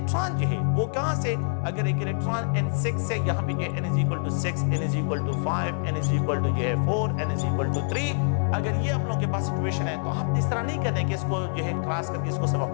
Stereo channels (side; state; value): right; silent; 61 dB below the other